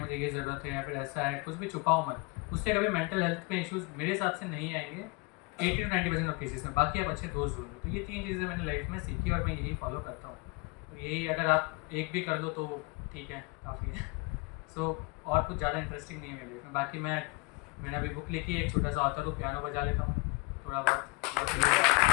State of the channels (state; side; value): quieter; right; 26.6 dB